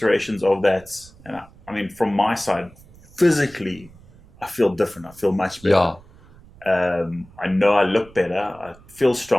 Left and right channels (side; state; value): right; noise; rumble, 24 dB below the sound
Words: of that, and I mean, from my side, physically, I feel different. I feel much better. Yeah. I know I look better. I feel